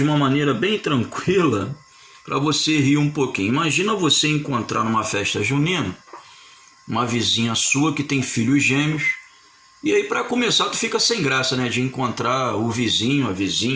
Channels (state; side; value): identical; both; correlation 1.00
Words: uma maneira bem tranquila, para você rir um pouquinho. Imagina você encontrar numa festa junina uma vizinha sua que tem filhos gêmeos, e aí para começar tu fica sem graça, né, de encontrar o vizinho, a